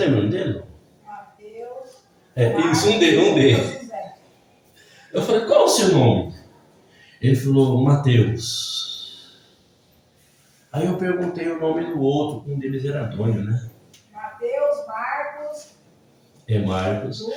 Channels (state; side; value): identical; both; correlation 1.00